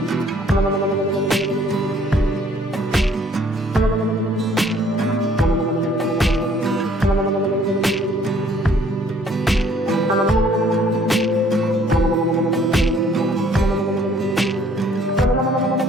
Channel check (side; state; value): both; normal; correlation 0.60